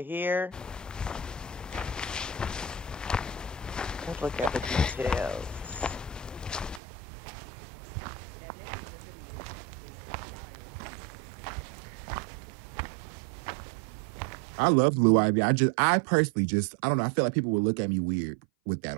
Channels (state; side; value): drops out; left; at 6.8 s